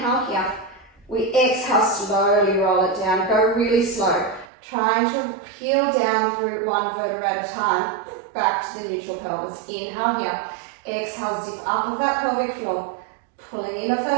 here. We exhale, slowly roll it down. Go really slow. Trying to peel down through one vertebra at a time. Back to the neutral pelvis. Inhale here. Exhale, zip up of that pelvic floor. Pulling in of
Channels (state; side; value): drops out; left; at 4.5 s